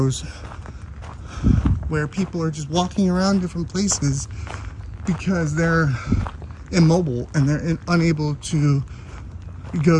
where people are just walking around different places because they're immobile and they're unable to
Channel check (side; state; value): both; identical; correlation 1.00